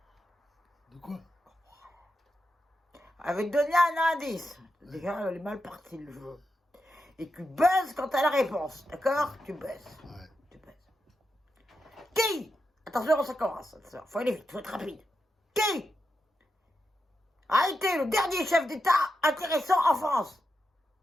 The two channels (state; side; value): normal; both; correlation 0.87